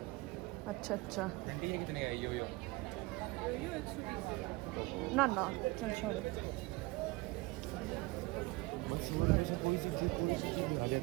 अच्छा आंटी ये कितने का है? यो ना चल छोड़ो।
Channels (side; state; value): left; quieter; 22.7 dB